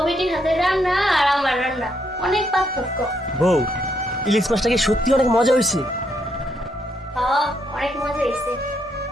বেটির হাতের রান্না আর আমার রান্না অনেক পার্থক্য। বউ, ইলিশ মাছটা কি সত্যি অনেক মজা হয়েছে? হ্যাঁ, অনেক মজা হয়েছে।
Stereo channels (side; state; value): both; normal; correlation 0.75